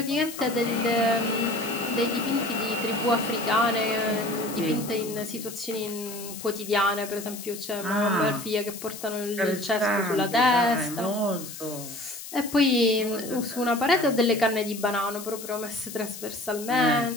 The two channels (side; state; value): left; noise; hiss, 12 dB below the sound